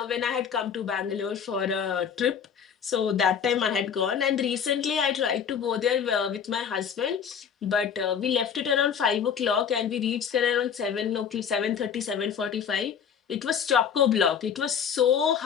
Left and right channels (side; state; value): right; quieter; 7.5 dB